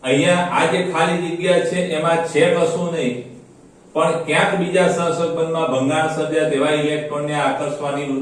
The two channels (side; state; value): both; identical; correlation 1.00